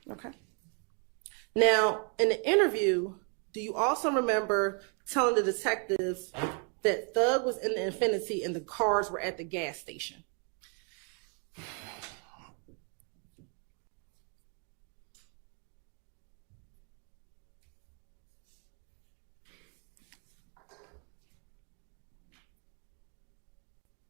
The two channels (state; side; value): quieter; left; 39.1 dB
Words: Okay. Now, in the interview, do you also remember telling the detectives that Thug was in the Infinity and the cars were at the gas station?